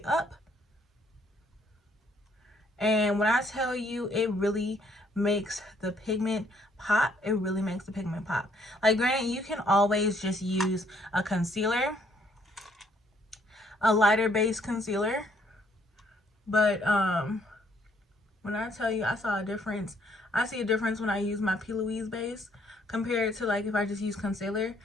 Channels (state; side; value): normal; both; correlation 0.67